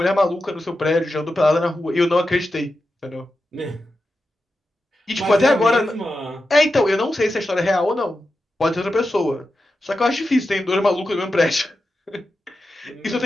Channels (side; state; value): both; normal; correlation 0.90